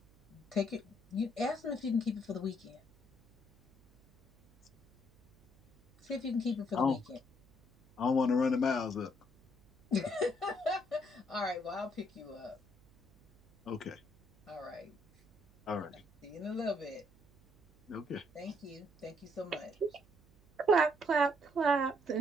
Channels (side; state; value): right; noise; hum, 28 dB below the sound